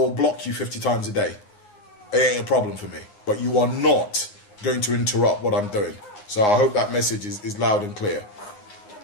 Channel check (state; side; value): late; right; 9.6 ms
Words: block you 50 times a day. It ain't a problem for me. But you are not going to interrupt what I'm doing. So I hope that message is loud and clear.